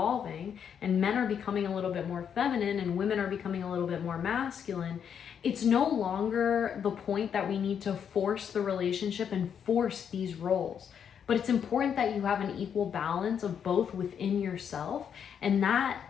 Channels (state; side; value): quieter; right; 7.9 dB